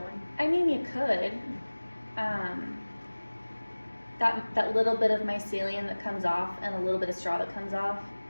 I mean, you could. That little bit of mycelium that comes off and a little bit of straw that comes off,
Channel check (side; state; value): both; inverted; correlation -1.00